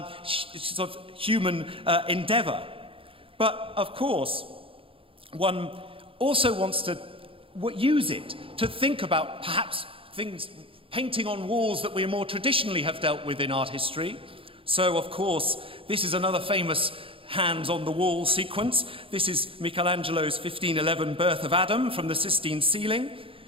sort of human endeavor. But of course, one also wants to use it to think about perhaps things, painting on walls that we more traditionally have dealt with in art history. So, of course, this is another famous hands-on-the-wall sequence. This is Michelangelo's 1511 Birth of Adam from the Sistine ceiling.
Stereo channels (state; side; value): late; left; 0.26 ms